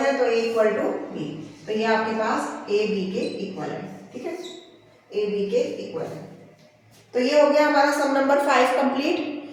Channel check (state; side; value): identical; both; correlation 1.00